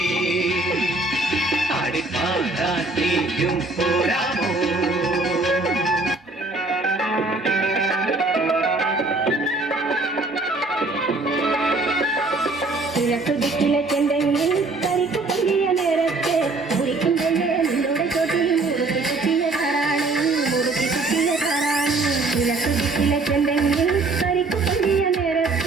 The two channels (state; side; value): quieter; left; 3.3 dB